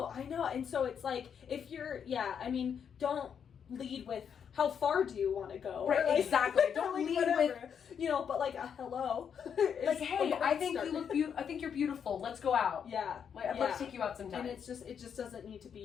And so it's like, if you're, I mean, don't lead with, how far do you want to go? Right, like, exactly. Don't like, lead whatever. You know, but like a hello. Like, hey, I think you look I think you're beautiful. Let's go out. Yeah. Like, I'd love to take you out sometime. And it just doesn't need to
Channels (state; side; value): quieter; right; 7.6 dB